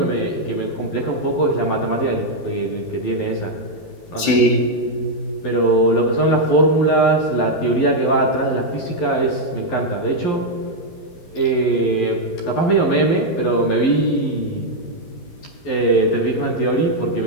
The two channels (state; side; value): late; right; 12 ms